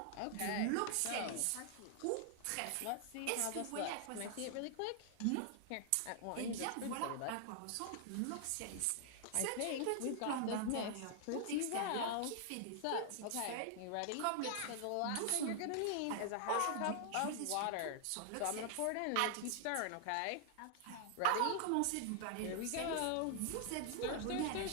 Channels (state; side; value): different; both; correlation 0.00